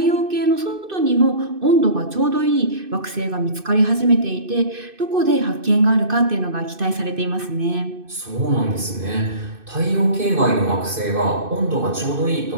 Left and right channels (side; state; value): left; late; 2.6 ms